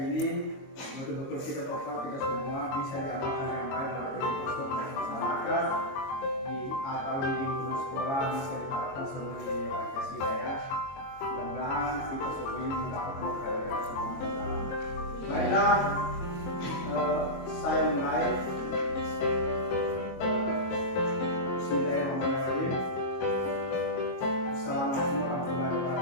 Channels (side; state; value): right; late; 22 ms